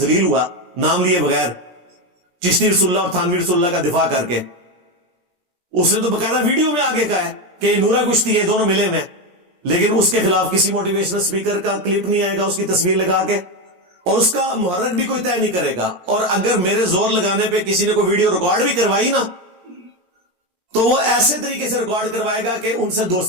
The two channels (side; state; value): left; late; 17 ms